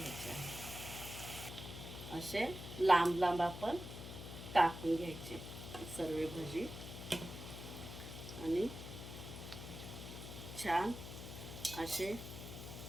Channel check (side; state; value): left; noise; hum, 9 dB below the sound